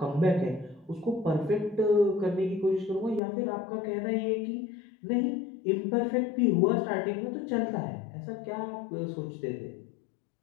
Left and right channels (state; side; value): drops out; right; at 3.2 s